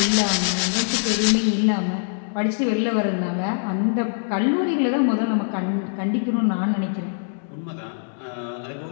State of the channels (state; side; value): silent; right; digital silence